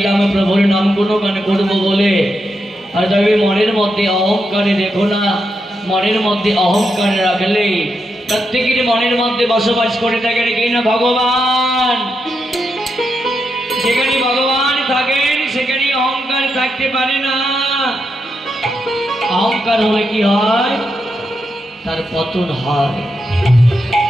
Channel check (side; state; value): both; normal; correlation 0.84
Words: প্রভুর নাম গুণগান করব বলে, আর তবে মনের মধ্যে অহংকারে দেখো না, মনের মধ্যে অহংকার রাখলে প্রত্যেকের মনের মধ্যে বসবাস করে থাকেন কি না ভগবান। যেখানে ভগবান থাকেন সেখানে অহংকার থাকতে পারে না। অহংকার হলে কি হয়? তার পতন হয়।